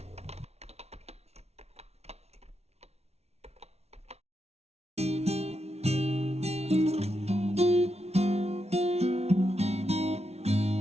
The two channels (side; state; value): left; late; 0.31 ms